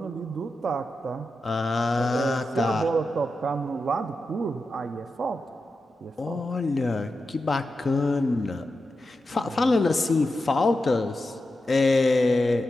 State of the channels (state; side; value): normal; both; correlation 0.90